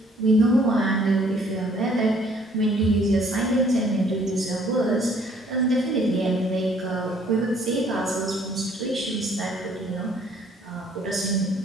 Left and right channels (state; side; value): normal; both; correlation 0.61